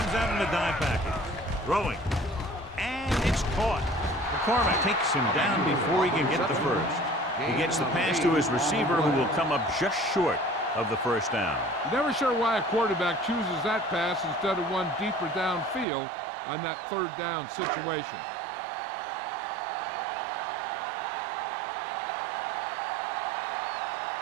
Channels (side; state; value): left; drops out; at 15.9 s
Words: out in a dime package. Throwing. And it's caught. McCormick takes him down before he can get the first. He gets the pass to his receiver, who will come up just short of the first down. Never sure why a quarterback chooses that pass instead of one deeper downfield on that third down situation.